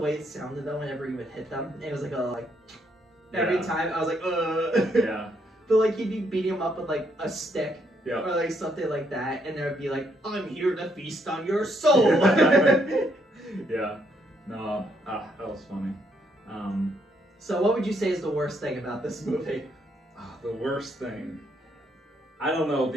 it sounded though whenever you would hit them. It was like every time I was like, Yeah. But like he'd be beating them up with like a stick. Yeah. Or like something like that, and there would be like, I'm here to feast on your soul. Yeah. No, that was funny. So what would you say is the worst thing about this movie? The worst thing? I don't know.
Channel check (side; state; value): both; normal; correlation 0.73